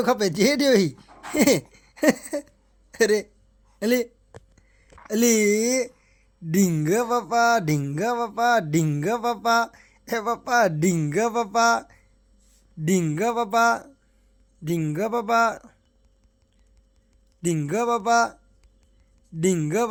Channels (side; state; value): both; identical; correlation 1.00